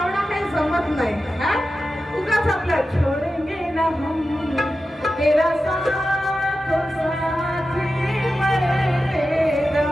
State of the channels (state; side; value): normal; both; correlation 0.92